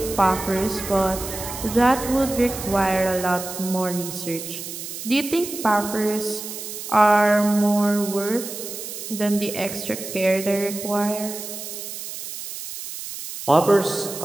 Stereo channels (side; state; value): right; noise; hiss, 9 dB below the sound